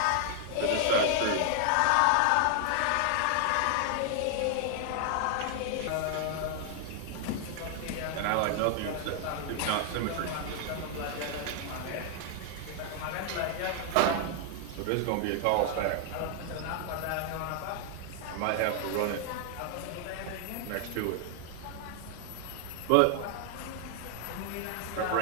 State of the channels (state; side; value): different; both; correlation 0.00